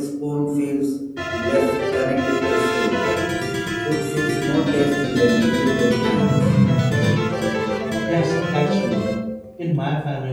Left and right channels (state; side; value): identical; both; correlation 1.00